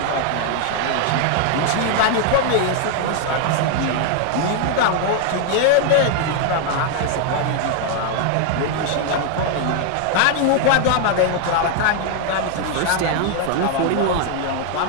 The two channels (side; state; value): both; different; correlation 0.00